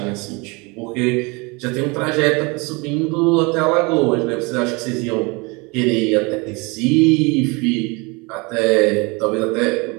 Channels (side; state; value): left; quieter; 27.7 dB